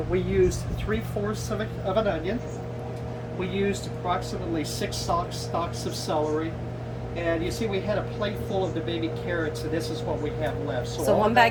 we used 3/4 of an onion. We used approximately 6 stalks of celery. And you see, we had a plate full of the baby carrots, and this is what we have left. So 1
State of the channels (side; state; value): both; identical; correlation 1.00